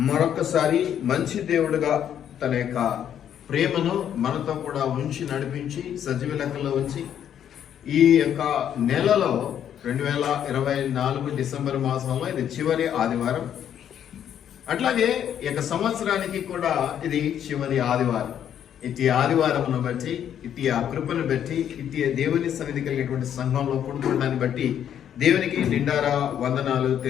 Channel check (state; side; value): quieter; right; 9.6 dB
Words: మరొకసారి మంచి దేవుడుగా తన యొక్క ప్రేమను మనతో కూడా ఉంచి నడిపించి సజీవ లెక్కలో ఉంచి ఈ యొక్క నెలలో 2024 డిసెంబర్ మాసంలో ఇది చివరి ఆదివారం. అట్లాగే ఈ యొక్క సంవత్సరానికి కూడా ఇది చివరి ఆదివారం. ఇట్టి ఆదివారమును బట్టి, ఇట్టి ఆ కృపను బట్టి, ఇట్టి దేవుని సన్నిధి కలిగేటువంటి సంఘంలో కూడుకోవడాన్ని బట్టి దేవునికి నిండారా వందనాలు